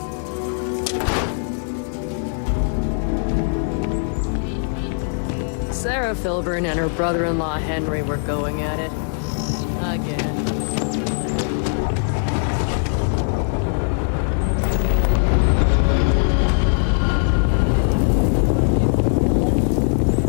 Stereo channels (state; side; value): silent; right; 62 dB below the other